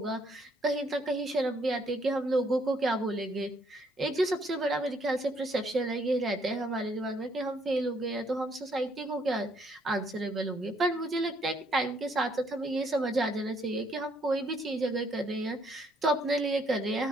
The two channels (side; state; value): both; normal; correlation 0.68